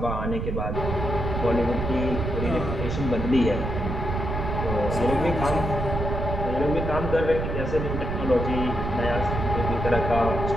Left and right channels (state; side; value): noise; right; rumble, 3 dB below the sound